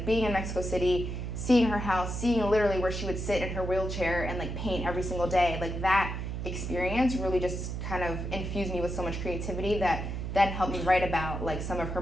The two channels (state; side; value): noise; right; hum, 4 dB below the sound